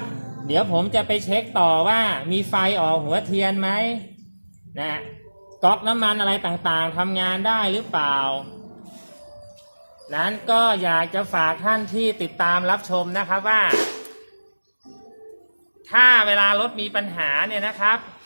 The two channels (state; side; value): inverted; both; correlation -1.00